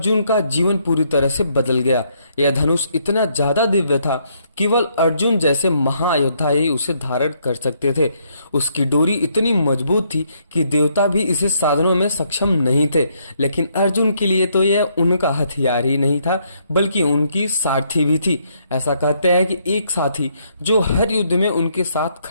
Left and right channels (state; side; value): inverted; both; correlation -0.72